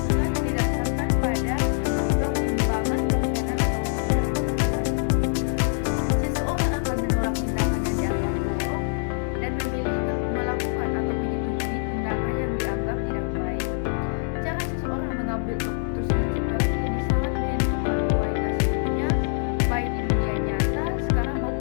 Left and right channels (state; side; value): silent; right; digital silence